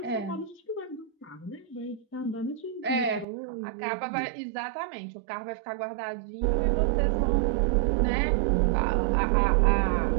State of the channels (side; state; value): left; drops out; at 3.2 s